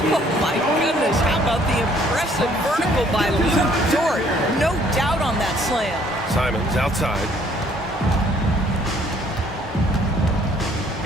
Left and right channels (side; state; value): both; normal; correlation 0.61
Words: my goodness. How about the impressive vertical by Luke Dort? No doubt on that slam. Simons outside.